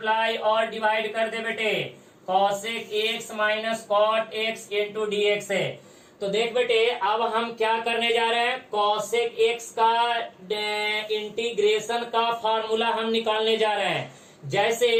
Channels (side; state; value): both; identical; correlation 1.00